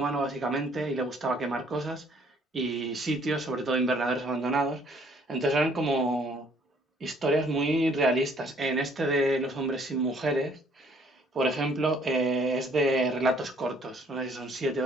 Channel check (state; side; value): normal; both; correlation 0.61